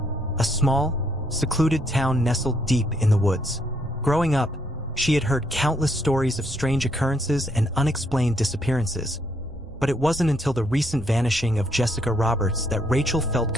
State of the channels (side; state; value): both; normal; correlation 0.72